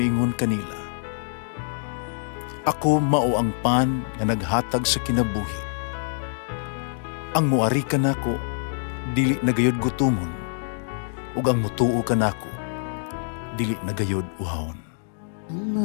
kanila, "Ako mao ang pan nga naghatag sa kinabuhi. Ang muari kanako dili nagayod gutomon, ug ang mutuo kanako dili nagayod uhawon." Ang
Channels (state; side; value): silent; right; digital silence